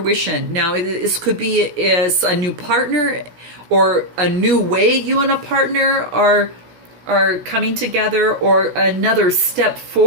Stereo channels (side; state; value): left; late; 16 ms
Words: Now, this could be as a new partner or a new way you and a partner are are coming together, or another step